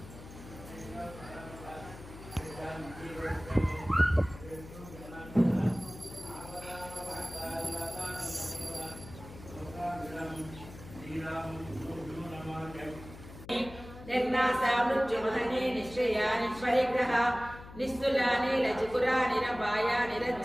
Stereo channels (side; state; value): left; noise; hum, 15 dB below the sound